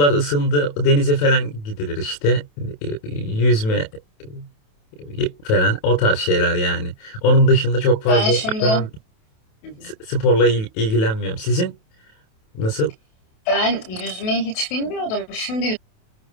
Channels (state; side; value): late; right; 28 ms